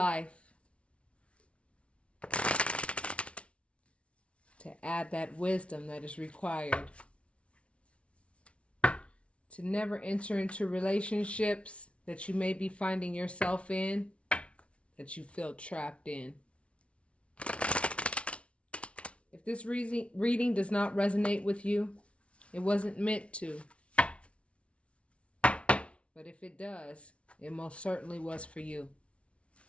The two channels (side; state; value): right; late; 0.061 ms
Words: to add that wisdom that is required, to never enter into relationships that you may be finding yourself in, that you feel trapped in. If this reading does not resonate with you, it wasn't meant to. But if it does, it most certainly was for you.